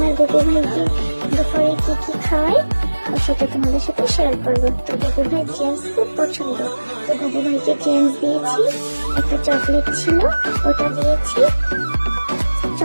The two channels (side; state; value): both; inverted; correlation -1.00